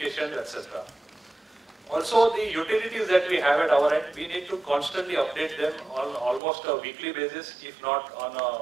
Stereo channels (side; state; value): left; drops out; at 6.4 s